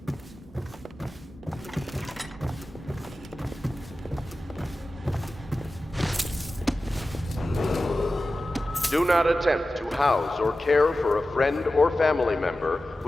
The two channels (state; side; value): normal; both; correlation 0.94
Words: Do not attempt to house or care for a friend or family member